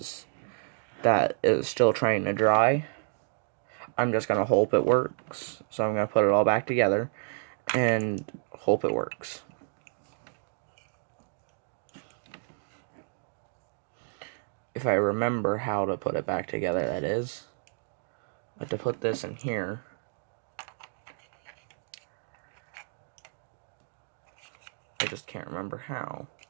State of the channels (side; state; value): left; silent; digital silence